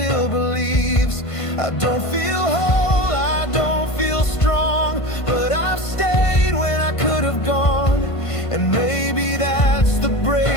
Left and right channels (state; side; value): late; right; 1.5 ms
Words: believes. I don't feel whole, I don't feel strong, but I've stayed when I could have gone. And maybe that's the